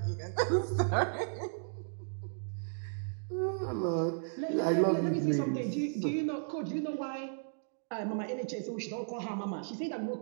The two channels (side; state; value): left; silent; digital silence